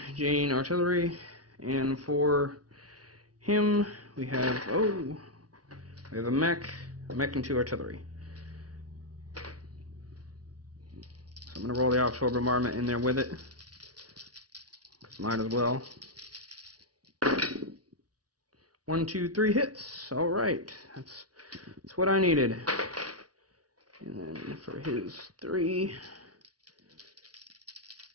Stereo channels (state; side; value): late; left; 0.68 ms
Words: Jane artillery. And for him, we have a mech and 2 artillery. So I'm going to roll the offshore bombardment in there with it. Might as well. 1, 2, 3 hits. All right, that's what I needed. And then for his 3,